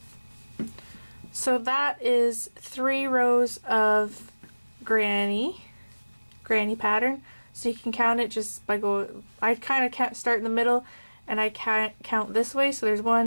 So that is 3 rows of granny pattern. So you can count it just by going, I kind of can't start in the middle and I can't count this way. So there's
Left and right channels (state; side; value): inverted; both; correlation -1.00